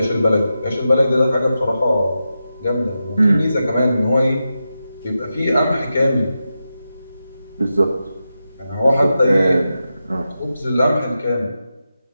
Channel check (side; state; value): both; inverted; correlation -0.90